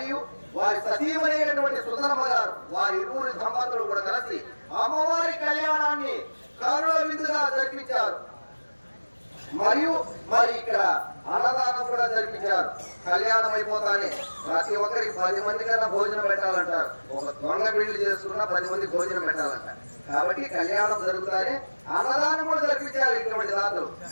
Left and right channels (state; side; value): inverted; both; correlation -1.00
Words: వారి సతీమైనటువంటి సుందరమ్మ గారు వారి ఇరువురి దంపతులు కూడా కలిసి అమ్మవారి కళ్యాణాన్ని కరుణ విధుగా జరిపించారు. మరియు మరి ఇక్కడ అన్నదానం కూడా జరిపించారు. కళ్యాణం అయిపోతానే ప్రతి ఒక్కరికి 10 మంది కన్నా భోజనం పెట్టాలంటారు. ఒక దొంగ పెళ్లి చేసుకున్నా 10 మంది భోజనం పెట్టాలంటారు. కాబట్టి కళ్యాణం జరుగుతానే అన్నదానం కూడా జరిపించారు ఇటువంటి దాతలు.